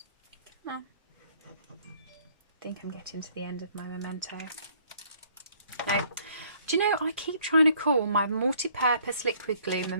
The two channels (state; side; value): inverted; both; correlation -0.61